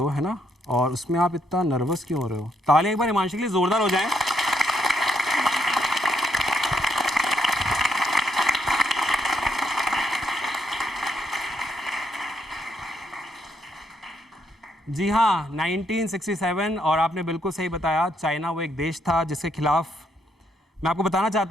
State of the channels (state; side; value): normal; both; correlation 0.75